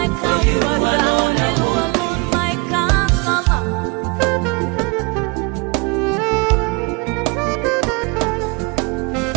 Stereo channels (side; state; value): left; quieter; 29.3 dB